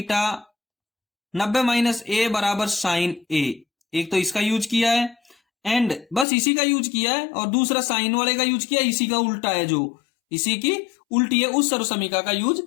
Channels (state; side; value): drops out; right; at 6.2 s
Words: 90 माइनस ए बराबर sin a। एक तो इसका यूज किया है एंड बस इसी का यूज किया है, और दूसरा साइन वाले का यूज किया, इसी का उल्टा है, जो इसी की उल्टी है उस सर्वसमीका का यूज